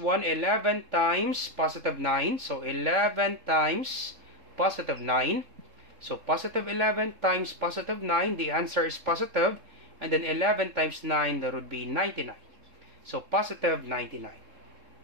11 times positive 9. So 11 times positive 9. So positive 11 times positive 9, the answer is positive. And then 11 times 9, that would be 99. So positive 99.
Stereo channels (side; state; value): left; late; 3.7 ms